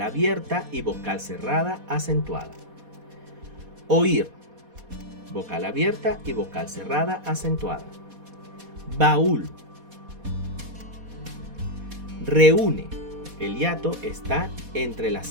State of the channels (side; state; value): left; late; 4.2 ms